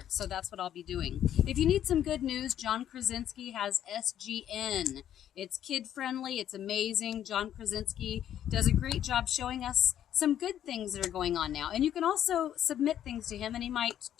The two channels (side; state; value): right; quieter; 10.6 dB